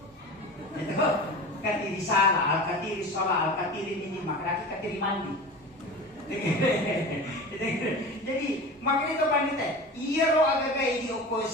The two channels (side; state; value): both; normal; correlation 0.33